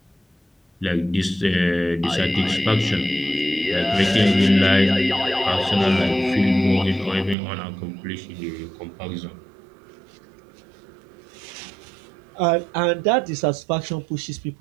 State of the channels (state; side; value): drops out; left; at 7.4 s